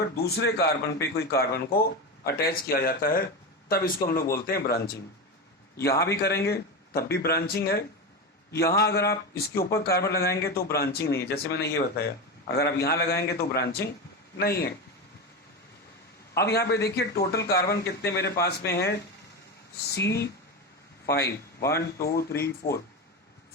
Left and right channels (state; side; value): normal; both; correlation 0.19